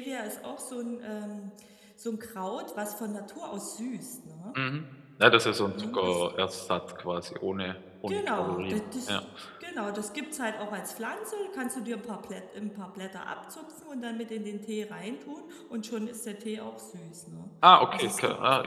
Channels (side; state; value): both; identical; correlation 1.00